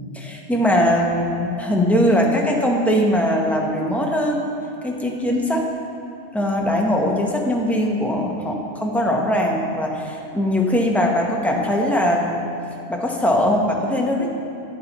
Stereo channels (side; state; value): both; normal; correlation 0.49